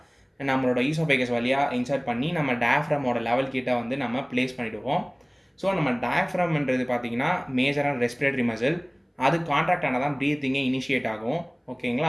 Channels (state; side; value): identical; both; correlation 1.00